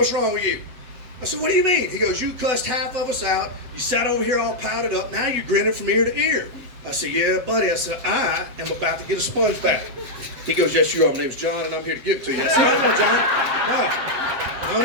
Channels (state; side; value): late; left; 8.0 ms